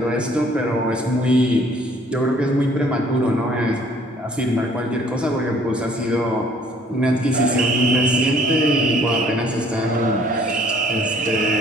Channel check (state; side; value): normal; both; correlation 0.59